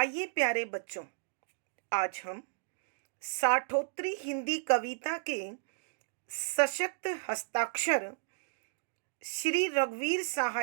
प्यारे बच्चों, आज हम साठोत्तरी हिंदी कविता के सशक्त हस्ताक्षर श्री रघुवीर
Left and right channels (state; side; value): silent; left; digital silence